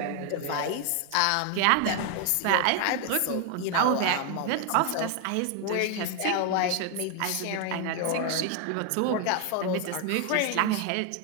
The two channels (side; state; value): both; different; correlation 0.01